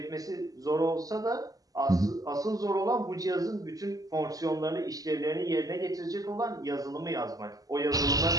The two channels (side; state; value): left; late; 0.17 ms